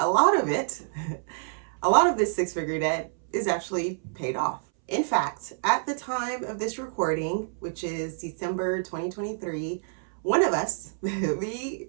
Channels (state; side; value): silent; left; 60 dB below the other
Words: lot of this six-figure debt is actually paid off. In fact, at the time of this recording, which is December 2023, one of us, me